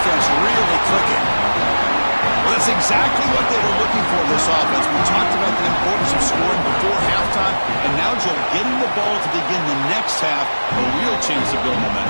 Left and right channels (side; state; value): both; inverted; correlation -1.00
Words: really clicking. Well, that's exactly what they were looking for, this offense. We talked about the importance of scoring before halftime, and now, Joe, getting the ball to begin the next half, a real chance to build